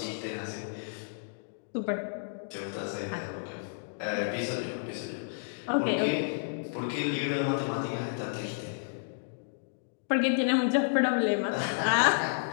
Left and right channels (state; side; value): silent; right; digital silence